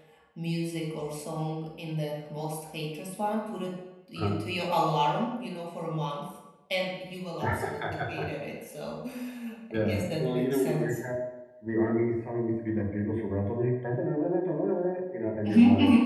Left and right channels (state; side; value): identical; both; correlation 1.00